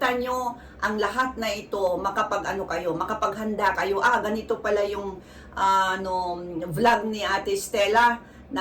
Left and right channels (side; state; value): both; identical; correlation 1.00